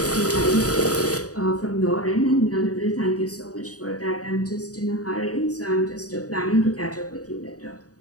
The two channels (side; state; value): right; late; 0.67 ms